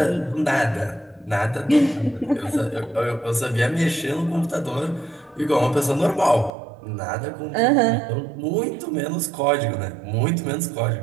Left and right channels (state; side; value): drops out; left; at 6.5 s